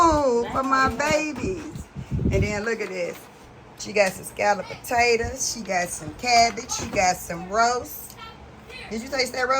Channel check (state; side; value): identical; both; correlation 1.00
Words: for my babies. And then look at this. She got some scalloped potatoes. She got some cabbage. She got some roast. Did you taste that